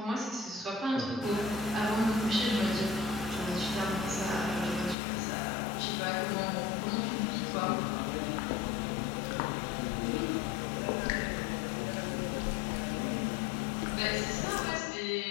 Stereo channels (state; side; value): drops out; right; at 5.0 s